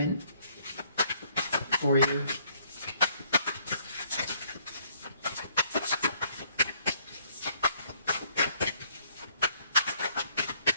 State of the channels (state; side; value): inverted; both; correlation -0.65